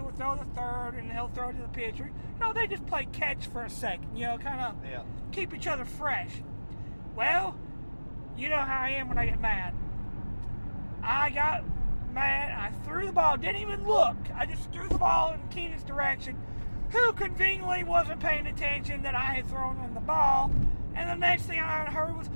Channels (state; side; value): inverted; both; correlation -1.00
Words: throw the third, and he'll throw to the pitcher. You know, they just play catch for a second, you know, kind of keep each other fresh. Well, you know how I am when I get mad. I got mad, I threw the ball, didn't even look. I just threw the ball in Keenan's direction, who conveniently wasn't paying attention that I had thrown in the ball. And the next thing I heard was,